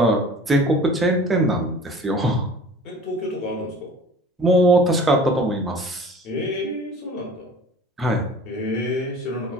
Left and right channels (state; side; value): normal; both; correlation 0.44